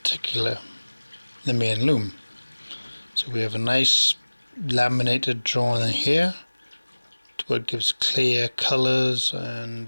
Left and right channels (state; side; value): inverted; both; correlation -1.00